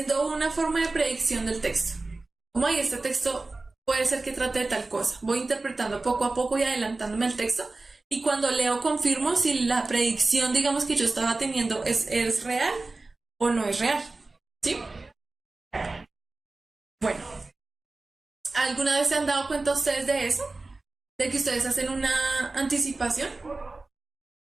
una forma de predicción del texto. Como hay este texto puede ser que trate de tal cosa. Voy interpretando poco a poco y adelantándome el texto. Y cuando leo confirmo si la predicción, digamos, que yo estaba teniendo es real o no es real. ¿Sí? Bueno. ¿Alguna vez se han dado cuenta ustedes de eso? ¿De que ustedes hacen una anticipación?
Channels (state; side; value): quieter; left; 3.3 dB